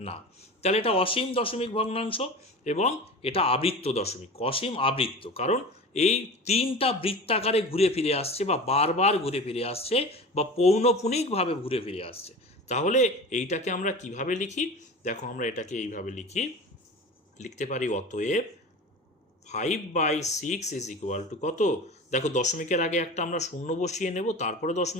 না। তাহলে এটা অসীম দশমিক ভগ্নাংশ এবং এটা আবৃত্ত দশমিক, অসীম আবৃত্ত, কারণ এই 3টা বৃত্তাকারে ঘুরে ফিরে আসছে, বা বারবার ঘুরে ফিরে আসছে, বা পৌনঃপুনিকভাবে ঘুরে ফিরে আসছে। তাহলে এইটাকে আমরা কিভাবে লিখি? দেখো আমরা এটাকে এইভাবে লিখতে পারি, অতএব 5/6 ইজ ইকুয়াল টু কত? দেখো দশমিকের আগে একটা আমরা শূন্য বসিয়ে নেব, তারপরে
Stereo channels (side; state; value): both; normal; correlation 0.33